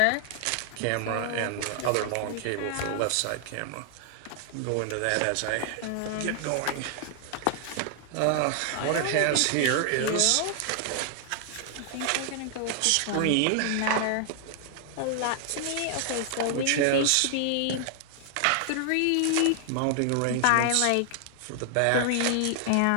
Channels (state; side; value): different; both; correlation 0.00